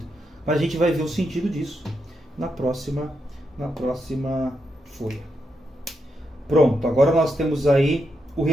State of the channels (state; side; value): normal; both; correlation 0.83